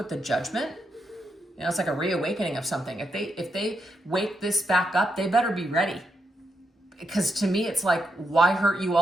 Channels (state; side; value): normal; both; correlation 0.82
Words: the Judgment, it's like a reawakening of something. If they wake this back up, they better be ready. Because to me, it's like, why hurt you